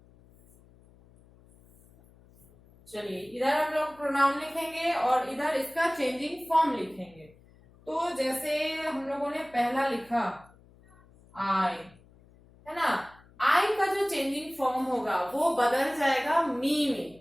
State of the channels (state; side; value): noise; left; hum, 27 dB below the sound